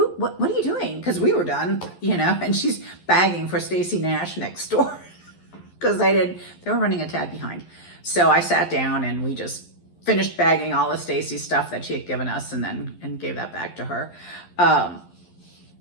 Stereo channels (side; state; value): right; late; 11 ms